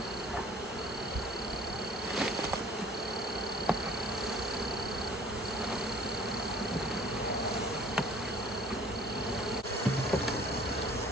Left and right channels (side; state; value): both; normal; correlation 0.53